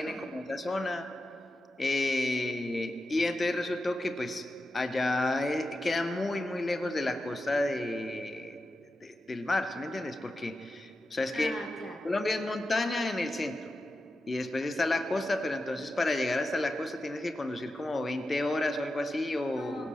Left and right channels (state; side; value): normal; both; correlation 0.91